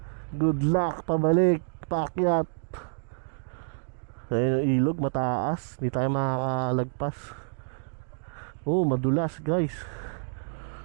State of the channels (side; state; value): left; silent; digital silence